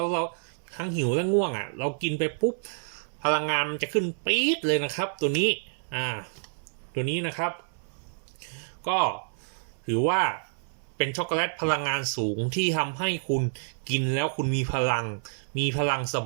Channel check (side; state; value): left; silent; 59 dB below the other